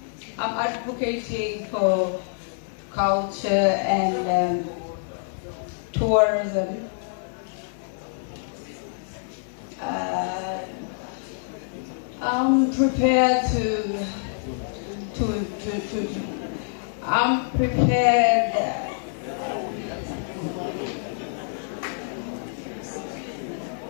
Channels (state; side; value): silent; right; 56 dB below the other